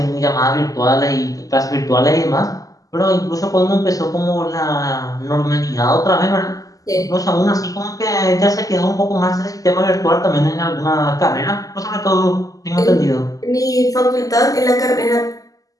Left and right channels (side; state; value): right; late; 0.17 ms